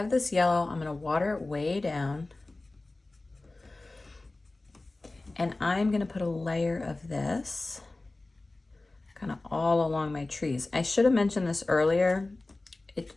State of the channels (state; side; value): quieter; right; 3.0 dB